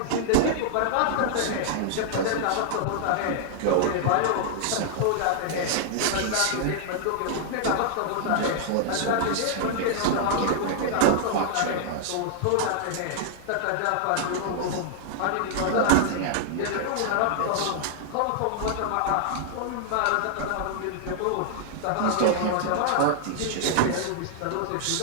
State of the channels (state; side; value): different; both; correlation -0.01